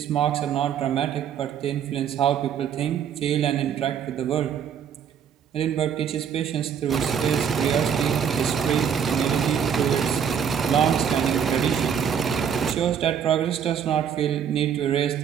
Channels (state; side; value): quieter; left; 8.1 dB